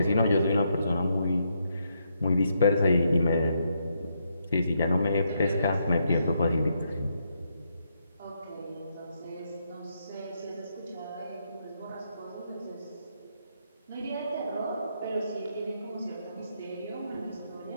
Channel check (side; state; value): both; inverted; correlation -0.78